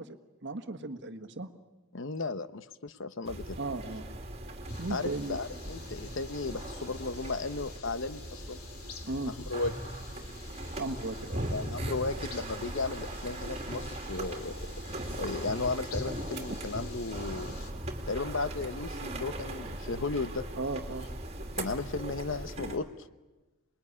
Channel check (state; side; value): normal; both; correlation 0.00